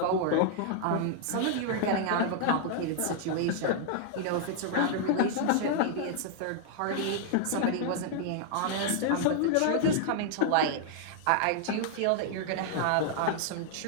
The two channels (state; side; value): different; both; correlation -0.01